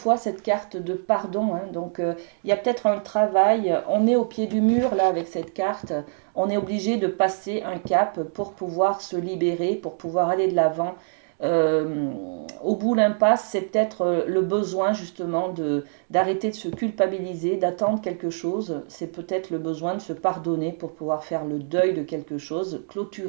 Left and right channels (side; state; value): left; silent; digital silence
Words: cette carte de pardon, hein, donc il y a peut-être un travail. On est au pied du mur là avec cette carte. On est obligé de passer un cap pour pouvoir se libérer, pour pouvoir aller de l'avant. Au bout de l'impasse, c'est peut-être le besoin justement d'arrêter de se culpabiliser, d'attendre quelque chose. C'est peut-être le besoin de se pardonner pour pouvoir faire le deuil de quelque chose,